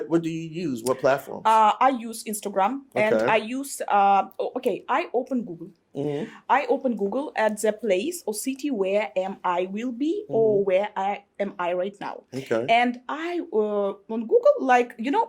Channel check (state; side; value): identical; both; correlation 1.00